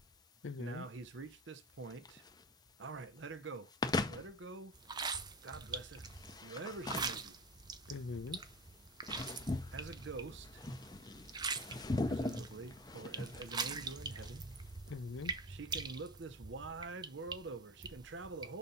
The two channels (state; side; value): normal; both; correlation 0.31